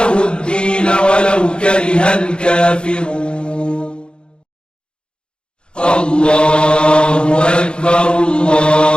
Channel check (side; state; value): right; late; 0.053 ms